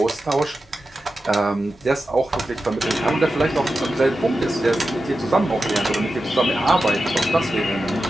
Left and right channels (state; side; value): normal; both; correlation 0.91